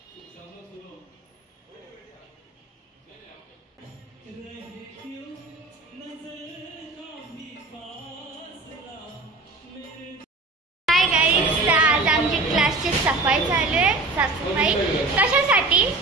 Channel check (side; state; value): left; quieter; 3.4 dB